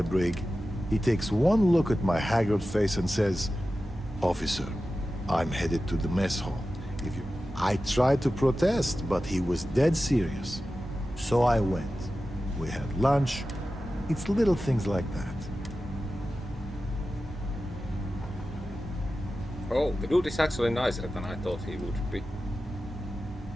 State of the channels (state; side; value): normal; both; correlation 0.94